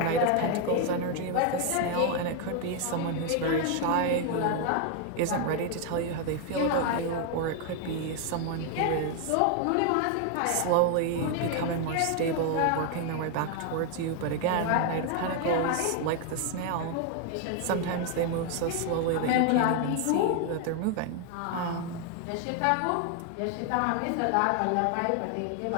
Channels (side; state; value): both; different; correlation 0.00